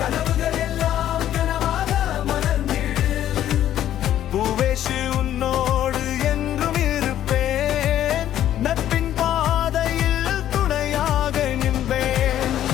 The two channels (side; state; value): right; quieter; 11.7 dB